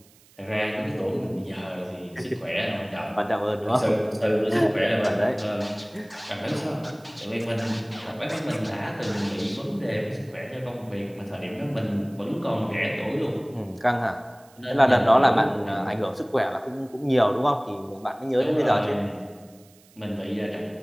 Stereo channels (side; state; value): right; noise; hiss, 28 dB below the sound